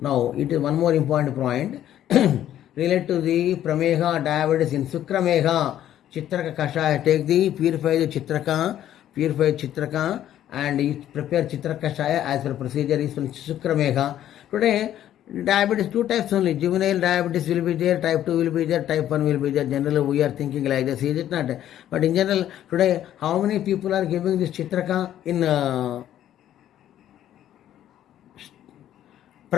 it is one more important point. Relate to the prameha diabetes in sukrameha, Chitraka kashaya. Take the purified Chitraka, and prepare Chitraka kashaya as per procedure is from sukrameha. Today, diabetes, two types only. Juvenile diabetes will be there, type 2 will be there, type 1 will be there. Generally, we are thinking like this, is it not? But in general, today, how many people are giving this Chitraka in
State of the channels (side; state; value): right; quieter; 11.6 dB